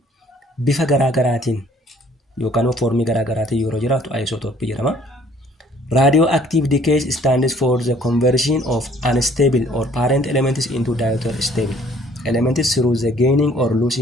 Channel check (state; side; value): normal; both; correlation 0.58